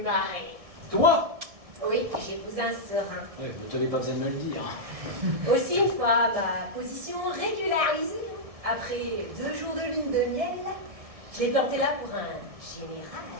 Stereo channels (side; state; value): left; late; 1.7 ms